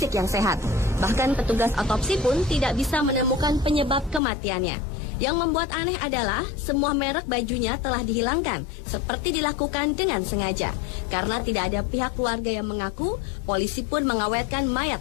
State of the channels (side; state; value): right; drops out; at 4.2 s